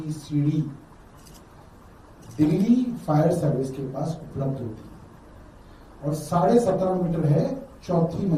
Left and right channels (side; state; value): both; identical; correlation 1.00